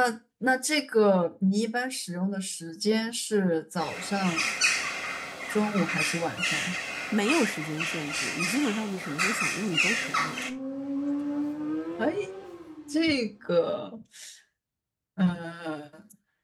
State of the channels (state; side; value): identical; both; correlation 1.00